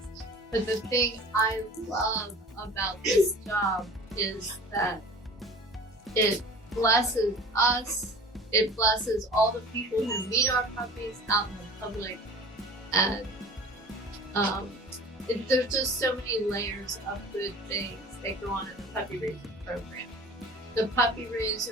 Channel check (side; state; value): both; normal; correlation 0.41